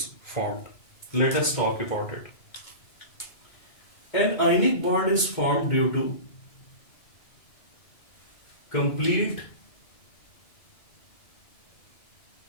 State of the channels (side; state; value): right; late; 2.2 ms